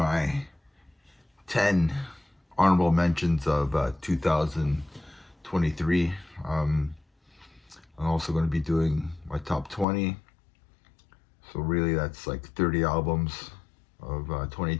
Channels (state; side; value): drops out; right; at 9.9 s